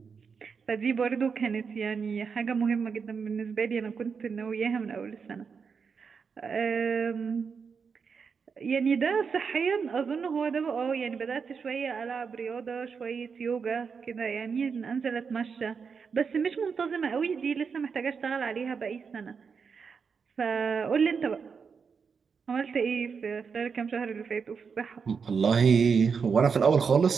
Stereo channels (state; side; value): quieter; left; 5.8 dB